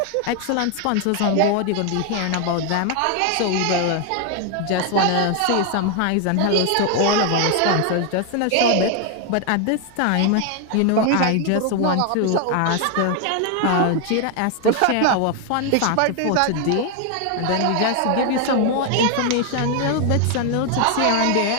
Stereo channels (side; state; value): both; different; correlation 0.01